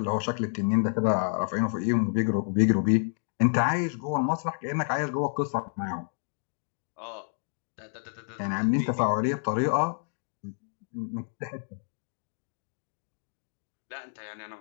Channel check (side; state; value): right; silent; 58 dB below the other